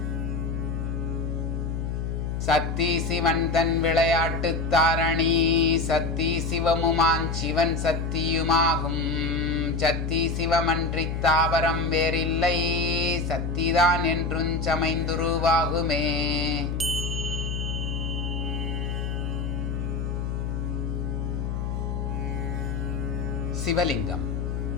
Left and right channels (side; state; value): left; noise; hum, 2 dB below the sound